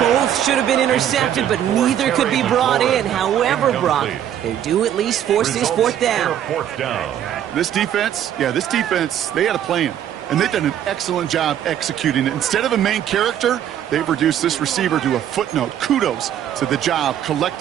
should have been intercepted, but neither could be brought in. However, Brock, they do at least force this 4th down. This defense, they had a plan. And they've done an excellent job executing it. Instead of a main character, they've reduced this receiver to a footnote. Kudos to the job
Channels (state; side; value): quieter; left; 10.4 dB